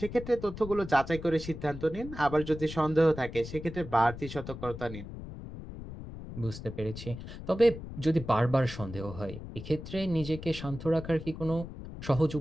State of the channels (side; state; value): left; noise; rumble, 11 dB below the sound